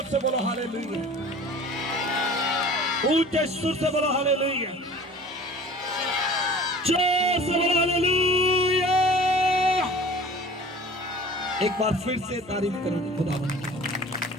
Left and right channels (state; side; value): normal; both; correlation 0.44